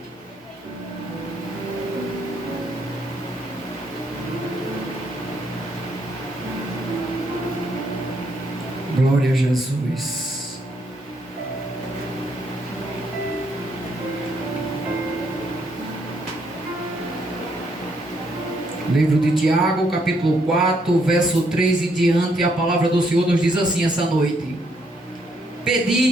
Glória a Jesus. Livro de Tiago, capítulo 4, verso 3 e diante, a palavra do Senhor nos diz assim essa noite:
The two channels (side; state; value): both; normal; correlation 0.72